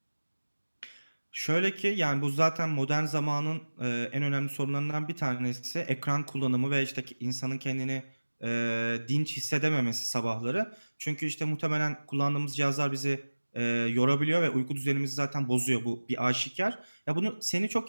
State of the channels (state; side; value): inverted; both; correlation -1.00